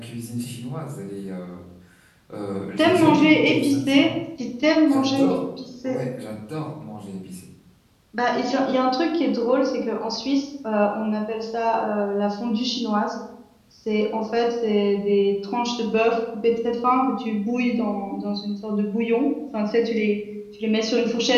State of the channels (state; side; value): identical; both; correlation 1.00